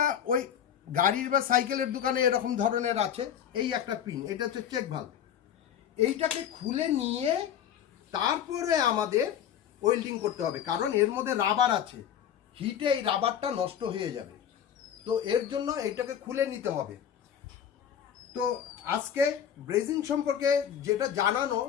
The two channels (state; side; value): quieter; right; 9.3 dB